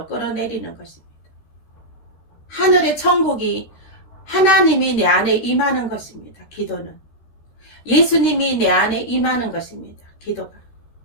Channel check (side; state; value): right; late; 13 ms